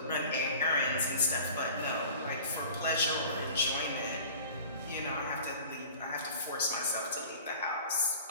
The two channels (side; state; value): both; inverted; correlation -0.42